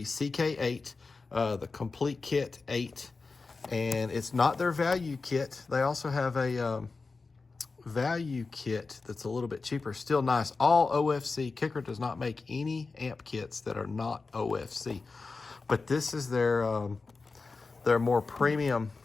CK8, the complete kit 8, and it's not their value kit. They also have a value kit that's a little bit cheaper, still nice. All OFC. Kicker does not make any amp kits that are not OFC, but this is their more premium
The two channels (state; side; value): quieter; right; 4.1 dB